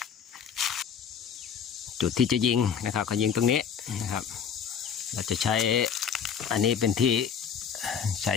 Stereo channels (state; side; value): quieter; right; 7.4 dB